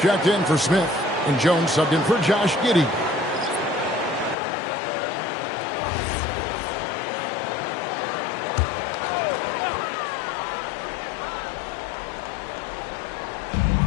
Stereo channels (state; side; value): drops out; right; at 4.4 s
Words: in for Smith. And Jones subbed in for Josh Giddey.